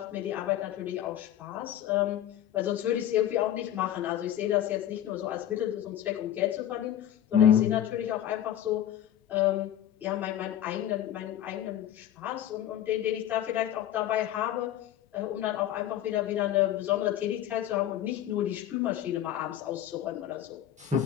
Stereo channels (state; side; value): quieter; right; 11.4 dB